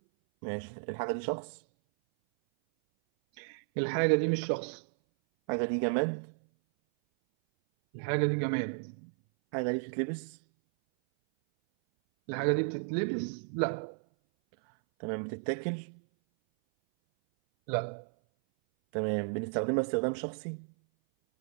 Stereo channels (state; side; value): silent; left; 56 dB below the other